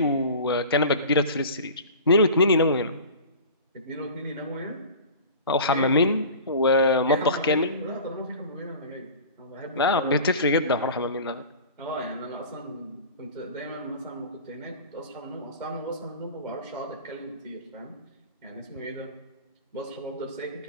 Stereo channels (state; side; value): inverted; both; correlation -0.37